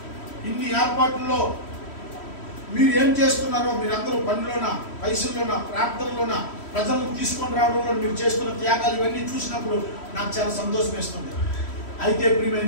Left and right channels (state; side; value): late; right; 3.1 ms